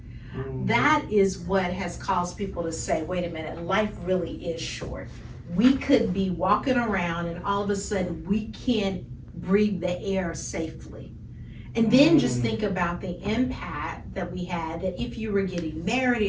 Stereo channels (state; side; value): identical; both; correlation 1.00